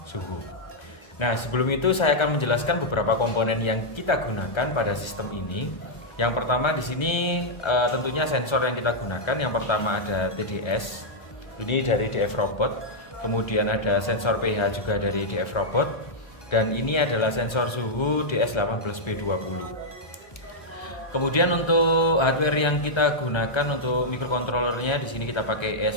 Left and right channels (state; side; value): late; right; 1.3 ms